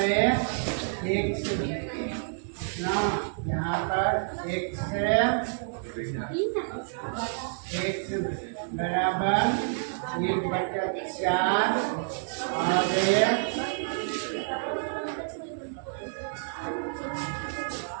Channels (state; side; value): silent; left; 59 dB below the other